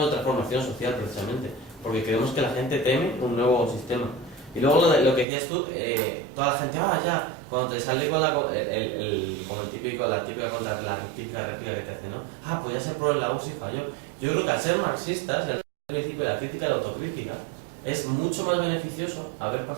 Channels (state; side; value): drops out; left; at 5.2 s